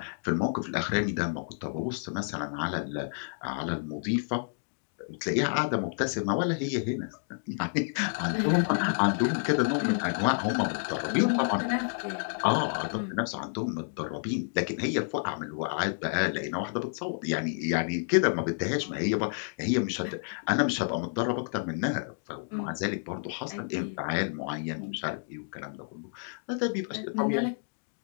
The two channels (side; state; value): right; silent; digital silence